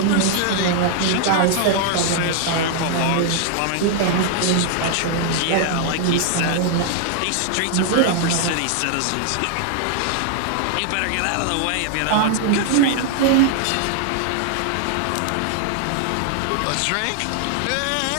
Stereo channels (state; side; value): different; both; correlation 0.00